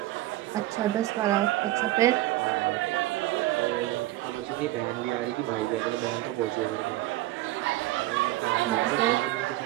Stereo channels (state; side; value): quieter; left; 16.5 dB